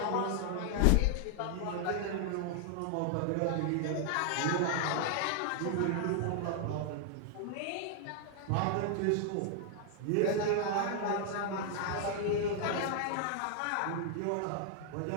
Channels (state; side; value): different; both; correlation 0.00